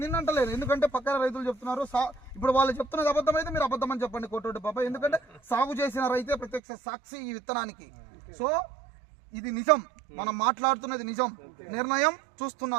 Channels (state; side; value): drops out; left; at 6.6 s